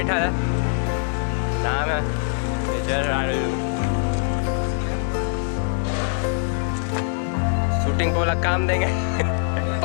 है, नाम है शूटिंग को वाला काम देंगे।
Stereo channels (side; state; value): right; silent; 57 dB below the other